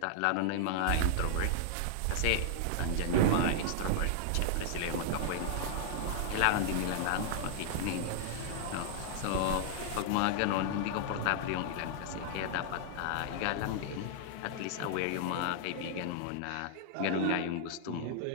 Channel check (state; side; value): different; both; correlation -0.01